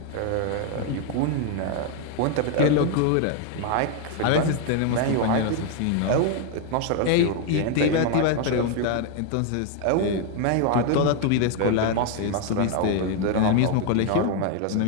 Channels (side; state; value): both; different; correlation 0.01